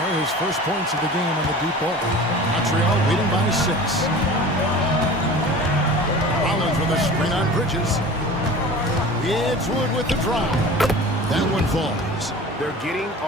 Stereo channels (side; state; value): both; normal; correlation 0.39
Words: His first points of the game on the deep ball. Montreal leading by 6. Rollins with a screen on Bridges. It's Wood with the drop. That one falls. They're getting